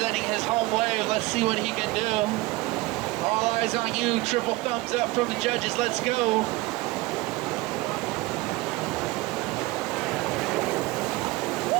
his home wave. Let's see what he can do. All eyes on you. Triple thumbs up from the judges. Let's go.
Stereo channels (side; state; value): left; quieter; 20.7 dB